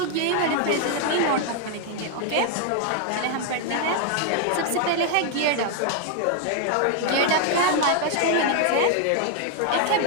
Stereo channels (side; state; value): both; different; correlation 0.00